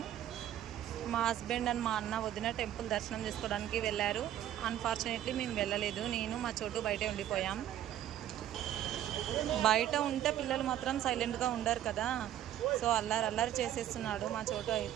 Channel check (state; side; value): quieter; left; 11.8 dB